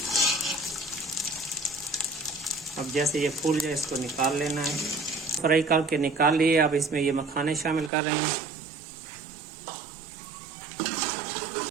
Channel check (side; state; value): left; drops out; at 7.9 s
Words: अब जैसे ये फूल जाए इसको निकाल लेना है। फ्राई करके निकाल लिए। अब इसमें ये मखाने शामिल कर रहे हैं।